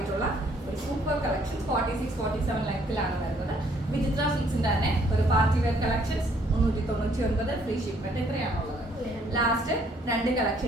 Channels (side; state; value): both; normal; correlation 0.65